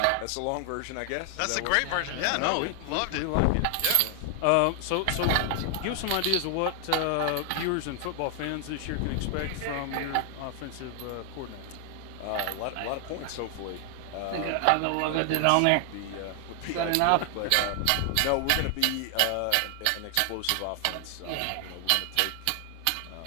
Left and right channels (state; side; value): different; both; correlation 0.00